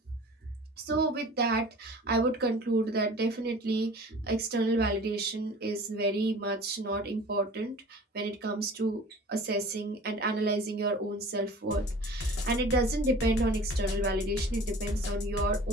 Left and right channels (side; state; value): both; normal; correlation 0.43